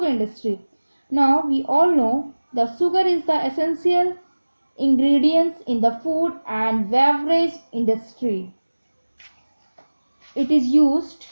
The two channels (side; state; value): both; inverted; correlation -1.00